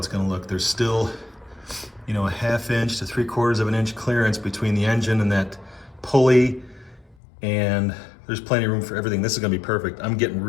going to look. There's still, you know, a 1/2 inch to 3/4 of an inch clearance between the engine and that pulley, and there's plenty of room for everything. This is going to be perfect. I'm getting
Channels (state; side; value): drops out; right; at 7.2 s